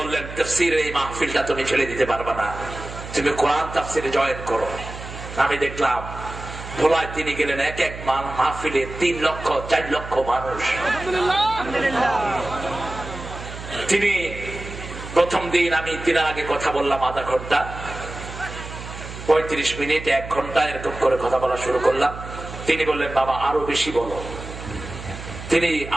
তাফসীরের এই মাহফিলটা তুমি ছেড়ে দিতে পারবে না, তুমি কোরআন তাফসীরে জয়েন করো। আমি দেখলাম ভোলায় তিনি গেলেন, এক এক মাহফিলে 3 লক্ষ 4 লক্ষ মানুষ। তিনি প্রথম দিন আমি তিনার আগে কথা বললাম আধা ঘন্টা, 35 মিনিট, 1 ঘন্টা এরকম করে কথা বলা শুরু করলাম। তিনি বললেন, বাবা আরো বেশি বলো। তিনি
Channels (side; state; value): right; noise; hum, 11 dB below the sound